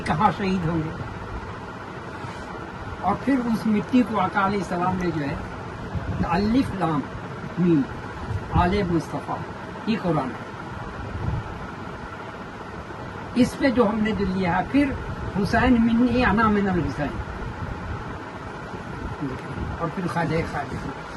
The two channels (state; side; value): identical; both; correlation 1.00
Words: کہاں شہید ہوں گے؟ اور پھر اس مٹی کو آقا علیہ السلام نے جو ہے الف لام میم آل مصطفیٰ یہ قرآن ہے، اس پہ جو ہم نے جو لیا ہے. پھر حسین منی انا من الحسین، اور پھر خواجہ خواجہ.